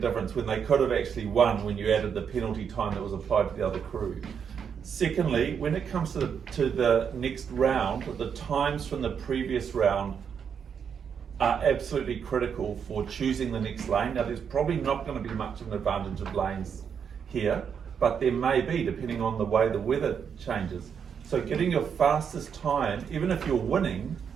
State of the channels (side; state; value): left; quieter; 7.3 dB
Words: when they could have actually won when you added the penalty time that was applied to the other crew. Secondly, when it comes to the next round, the times from the previous round are absolutely critical for choosing the next lane. Now there's probably not going to be much of an advantage of lanes here, but there may be depending on the way the weather changes. So getting your fastest time, even if you're winning,